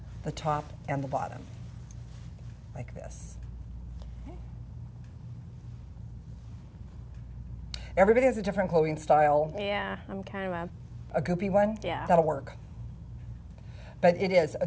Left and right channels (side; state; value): both; identical; correlation 1.00